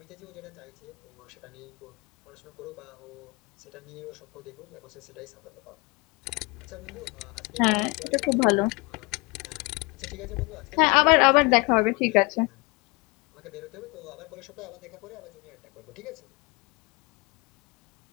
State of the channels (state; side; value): quieter; right; 27.5 dB